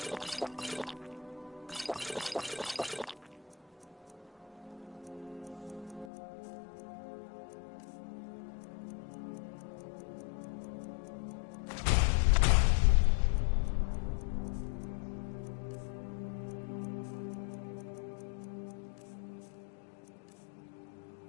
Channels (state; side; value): drops out; right; at 6.1 s